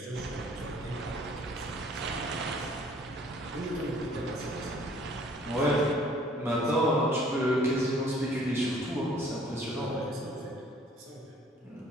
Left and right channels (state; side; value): normal; both; correlation 0.56